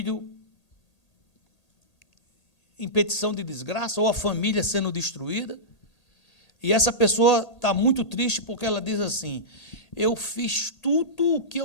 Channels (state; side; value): late; right; 1.8 ms